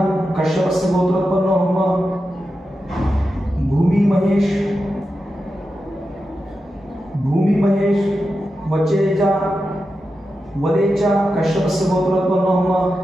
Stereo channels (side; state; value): both; normal; correlation 0.90